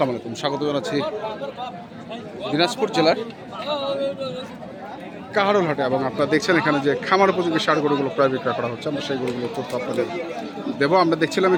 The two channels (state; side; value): identical; both; correlation 1.00